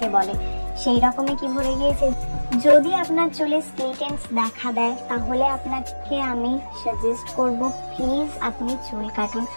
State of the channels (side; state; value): both; inverted; correlation -1.00